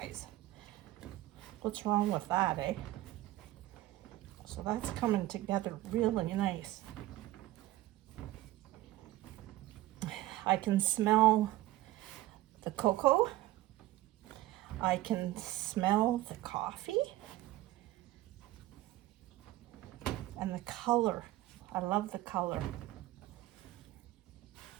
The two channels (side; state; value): left; quieter; 16.3 dB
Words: What's wrong with that, eh? So that's coming together really nice. I can smell the cocoa. I can smell the coffee. And the color. I love the color.